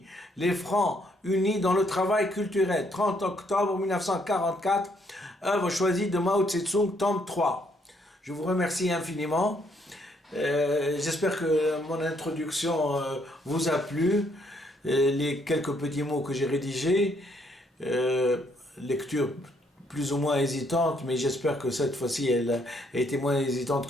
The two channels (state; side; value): normal; both; correlation 0.70